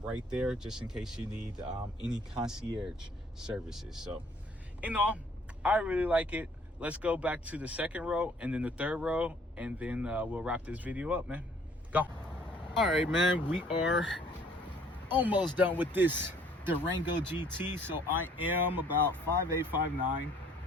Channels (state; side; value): normal; both; correlation 0.59